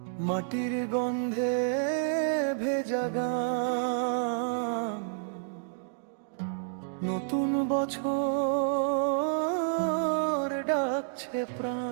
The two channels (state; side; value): silent; left; digital silence